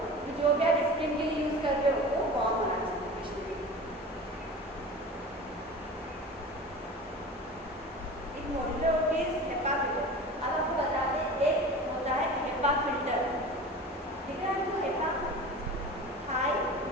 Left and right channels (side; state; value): both; normal; correlation 0.35